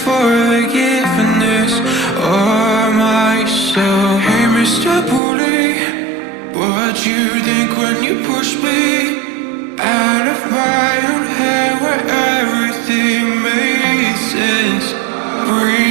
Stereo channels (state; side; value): drops out; left; at 5.2 s